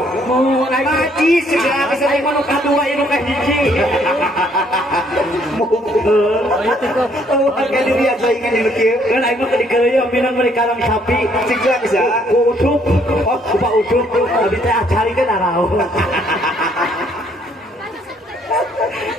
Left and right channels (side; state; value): both; normal; correlation 0.66